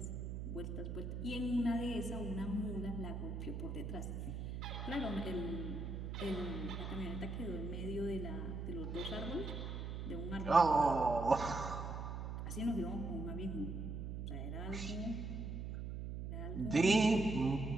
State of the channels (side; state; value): right; noise; hum, 5 dB below the sound